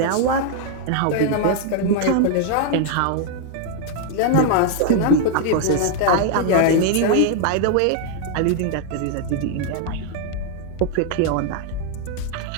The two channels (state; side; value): different; both; correlation 0.00